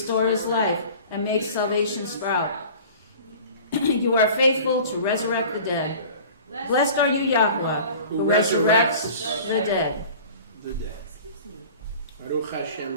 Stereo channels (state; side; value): inverted; both; correlation -0.43